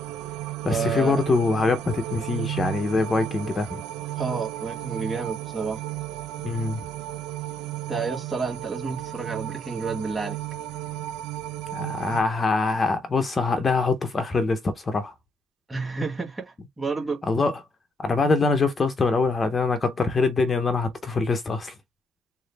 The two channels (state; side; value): normal; both; correlation 0.72